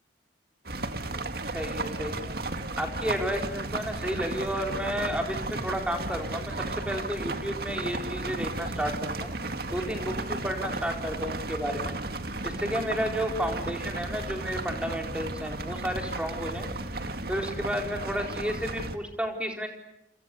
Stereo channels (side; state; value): both; normal; correlation 0.53